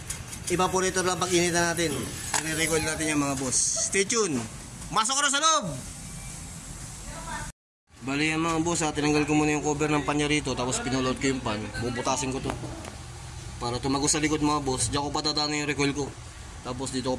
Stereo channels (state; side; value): identical; both; correlation 1.00